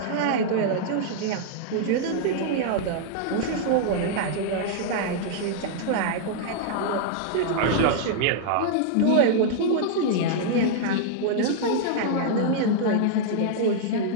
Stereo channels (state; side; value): different; both; correlation -0.01